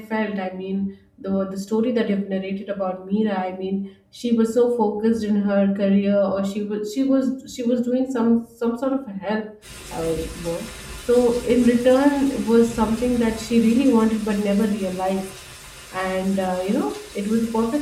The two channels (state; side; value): identical; both; correlation 1.00